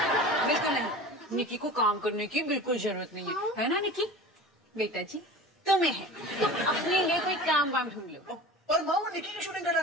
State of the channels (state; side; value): normal; both; correlation 0.36